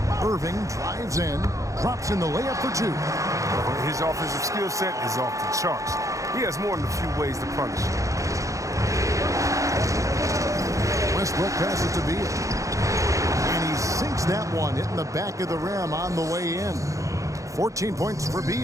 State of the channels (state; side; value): late; left; 0.15 ms